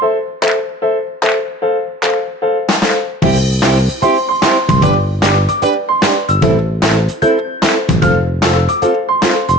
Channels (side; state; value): both; normal; correlation 0.53